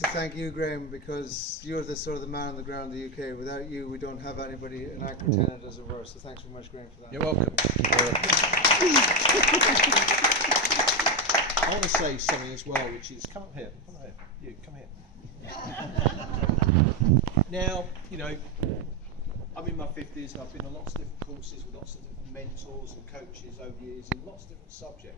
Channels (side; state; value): both; normal; correlation 0.11